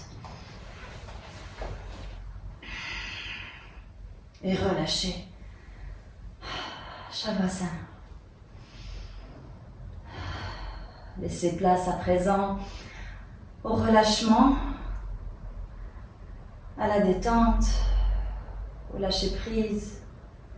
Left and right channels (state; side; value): identical; both; correlation 1.00